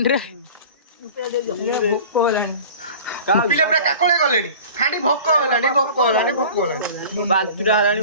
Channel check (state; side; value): inverted; both; correlation -0.41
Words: ରେ पिले पुरा काकोळे गलेनी खाडी भोक हलानी बांतुरा हलानी